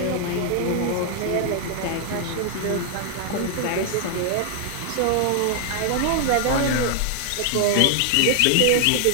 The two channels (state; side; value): different; both; correlation 0.00